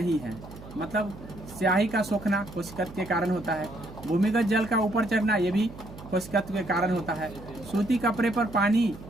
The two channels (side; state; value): right; noise; hum, 16 dB below the sound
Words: है। मतलब स्याही का सोखना कोशिकत्व के कारण होता है। भूमिगत जल का ऊपर चढ़ना ये भी कोशिकत्व के कारण होता है। सूती कपड़े पर पानी